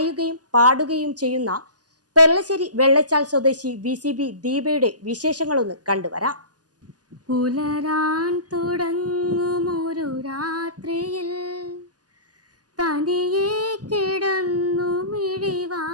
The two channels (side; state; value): left; late; 0.68 ms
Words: പാടുകയും ചെയ്യുന്ന പെർളശ്ശേരി വെള്ളച്ചാൽ സ്വദേശി VCB ദീപയുടെ വിശേഷങ്ങളൊന്ന് കണ്ടുവരാം. പുലരാൻ തുടങ്ങുമൊരു രാത്രിയിൽ തനിയെ കിടന്നു